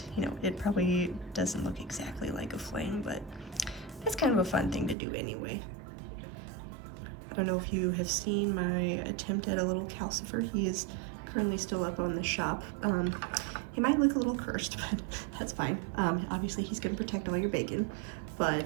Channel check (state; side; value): drops out; left; at 5.0 s